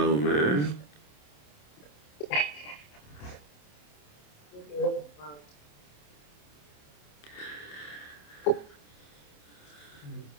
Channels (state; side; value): late; right; 27 ms